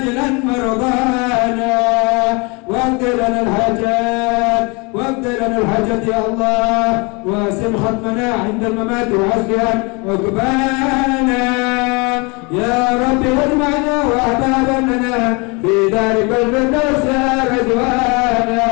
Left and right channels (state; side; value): quieter; right; 29.3 dB